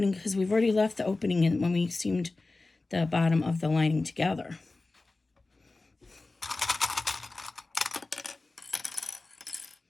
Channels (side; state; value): right; quieter; 3.3 dB